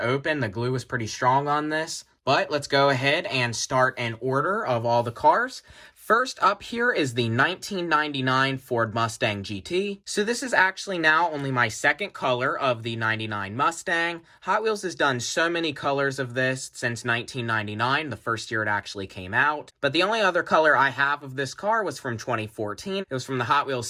open. The glue was pretty strong on this. But let's go ahead and start an order of all the cars. First up here is the 1999 Ford Mustang GT. So this is actually now only my second color of the 99 Mustang. Hot Wheels has done so many colors of this since 1999, the first year it actually came out. But the only other color I have of this car was from 2014. It was from the Hot Wheels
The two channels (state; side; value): identical; both; correlation 1.00